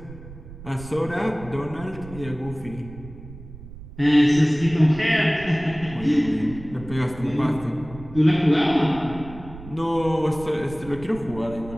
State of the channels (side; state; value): right; noise; rumble, 15 dB below the sound